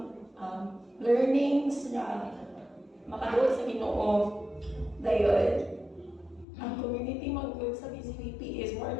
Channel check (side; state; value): right; drops out; at 6.5 s